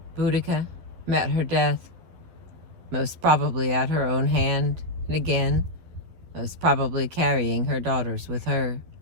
Boudica met her death, most probably at her own hand, and again, most probably carrying her daughters with her.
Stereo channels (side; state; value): left; late; 12 ms